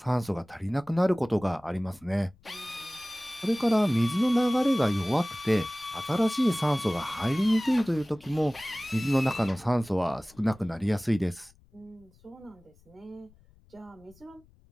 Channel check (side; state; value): left; noise; rumble, 29 dB below the sound